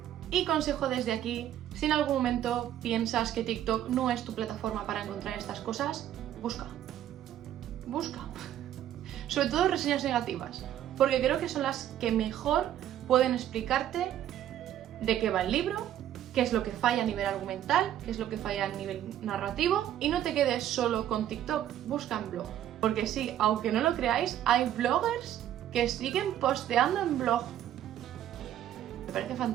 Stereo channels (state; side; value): quieter; left; 11.5 dB